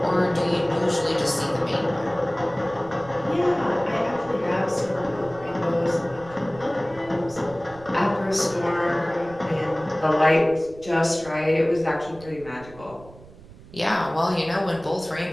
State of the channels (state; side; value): noise; right; rumble, 20 dB below the sound